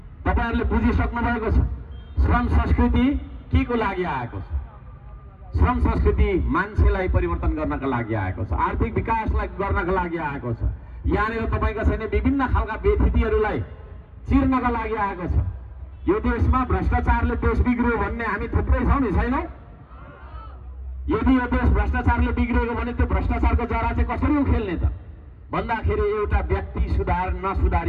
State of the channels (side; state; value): both; identical; correlation 1.00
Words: तपाईँहरूले बुझिसक्नु भएको छ श्रम संस्कृति के को लागि आएको छ। श्रम संस्कृति मान्छेलाई परिवर्तन गर्नका लागि आएको छ, आर्थिक विकासलाई गर्नका लागि आएको छ। यहाँनिर तपाईँको छैन विभिन्न खालका व्यथितिहरूलाई चिर्नका लागि आएको छ। यो देशमा भ्रष्टाचारले देश बिग्रियो भन्ने हामी थुप्रै छौँ नि, छैनौँ? यदि यो देश भ्रष्टाचारले बिग्रिएको भने त्यो भ्रष्टाचारको जरा चाहिँ कसरी उखेल्ने त भन्दाखेरि एउटा व्यक्ति